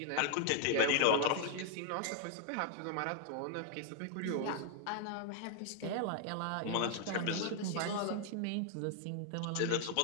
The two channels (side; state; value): both; different; correlation 0.00